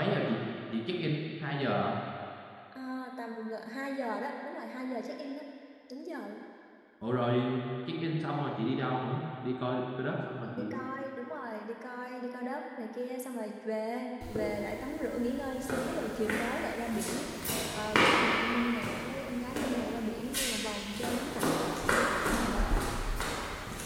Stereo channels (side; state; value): both; identical; correlation 1.00